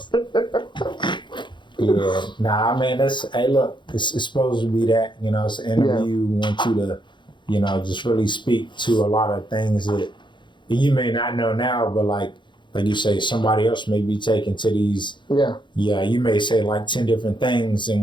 Yeah, I mean, hey, look, it's supposed to be that, it's an interview. We want you to, just really speak to a lot of things that you may not know now, but like you say, somebody else may be taken to these. Yeah, you may say 10 different things in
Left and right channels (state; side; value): late; right; 0.23 ms